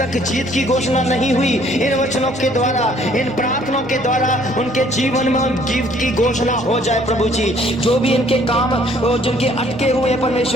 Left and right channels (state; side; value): noise; left; hum, 25 dB below the sound